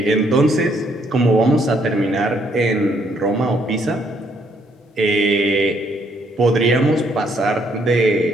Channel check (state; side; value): normal; both; correlation 0.70